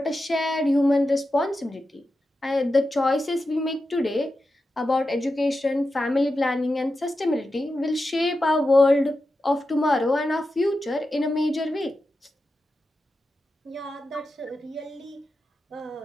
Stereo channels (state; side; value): normal; both; correlation 0.90